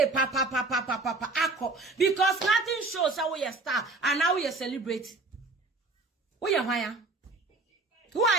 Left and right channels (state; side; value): quieter; left; 3.3 dB